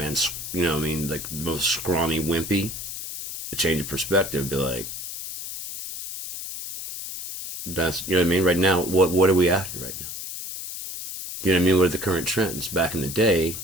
like the most scrawny wimpy, a change of perspective, be like, that's, right now, what are we after right now? What are the current trends? Back in the day,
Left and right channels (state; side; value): noise; left; hiss, 8 dB below the sound